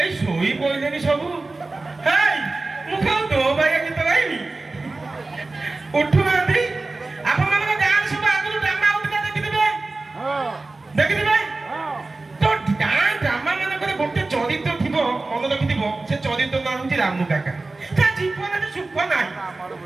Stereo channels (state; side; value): quieter; left; 3.3 dB